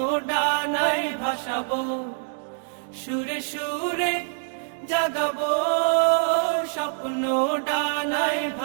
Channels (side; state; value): left; silent; digital silence